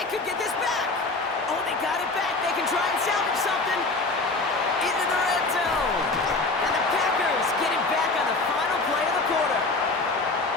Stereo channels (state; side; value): quieter; right; 3.4 dB